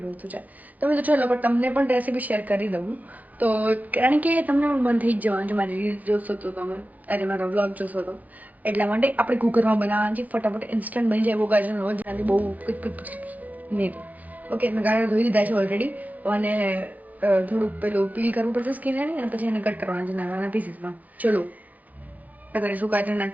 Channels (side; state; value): left; late; 0.080 ms